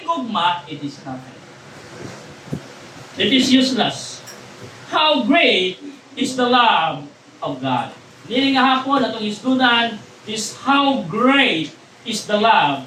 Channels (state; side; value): identical; both; correlation 1.00